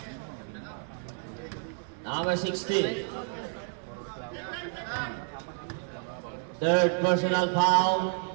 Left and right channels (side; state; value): left; silent; 58 dB below the other